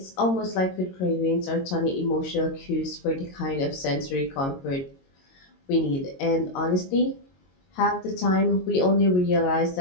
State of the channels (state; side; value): late; right; 22 ms